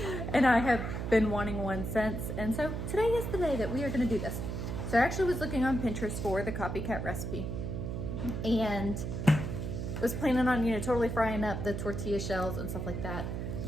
And I have been wanting one since. And so today is the day that we are going to do this. So I actually was looking on Pinterest for the copycat recipe and was planning on, you know, totally frying up the tortilla shells and stuff like that.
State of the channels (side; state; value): right; noise; hum, 4 dB below the sound